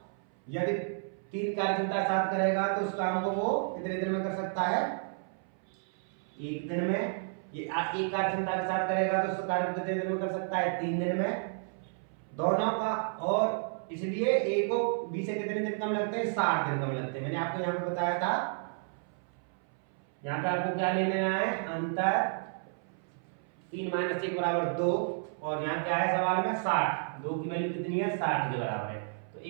यदि 3 कार्य क्षमता साथ करेगा तो उस काम को वो कितने दिन में कर सकता है, 1 दिन में, ये एक कार्य क्षमता के साथ करेगा तो उसका कार्य कितने दिन में कर सकता है? 3 दिन में दोनों का। और इसलिए ए को बी से कितने दिन कम लगते हैं? 60 दिन कम लगते हैं। मैंने आपको यहाँ पे बताया था, यहाँ पे आपको क्या ले लेना है? अंतर 3 - 1 = 2 और यहाँ क्या है सवाल में? 60। 2 की वैल्यू कितनी है? 60 के बराबर है। तो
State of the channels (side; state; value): left; silent; 57 dB below the other